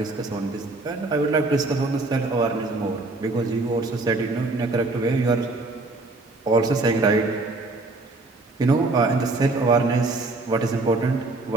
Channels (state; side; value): quieter; left; 3.2 dB